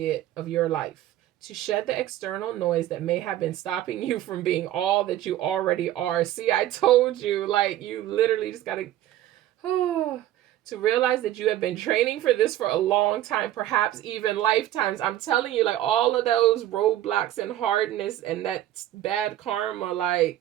of your life, to shed the external noise that may have been stopping you from being all that you already are. See, I told you, like, you literally just got to... to realize that you have been training for this for a long time, perhaps even lifetimes. I'm telling you, like, all of those roadblocks and hardness and that bad karma,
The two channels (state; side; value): quieter; left; 13.3 dB